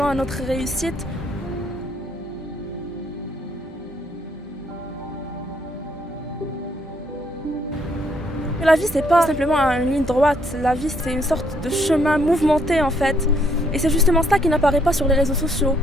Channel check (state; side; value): normal; both; correlation 0.69